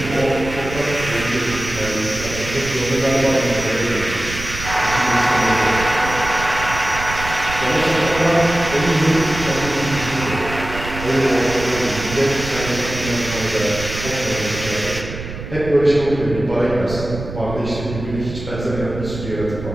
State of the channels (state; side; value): noise; right; rumble, 9 dB below the sound